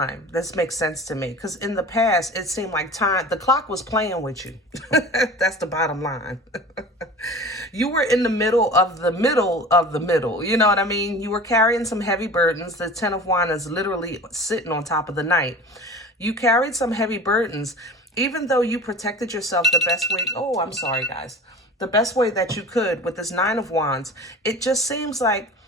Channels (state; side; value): normal; both; correlation 0.38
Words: This makes sense to me. Because in the past, it seemed like time, the clock was playing with you. That's the bottom line. You were in the middle of the middle. You know what I mean? You were carrying some heavy burdens. The Ten of Wands is literally sitting on top of the Knight. You carried some heavy burdens, even though you protected yourself the best way. Oh, I'm sorry, guys. The best way that you could with this Nine of Wands. It just seems like